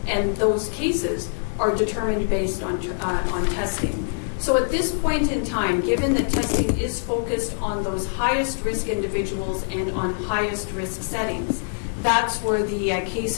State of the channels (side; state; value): right; silent; digital silence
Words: and those cases are determined based on testing. So at this point in time, given that testing is focused on those highest risk individuals and on highest risk settings, that's where the case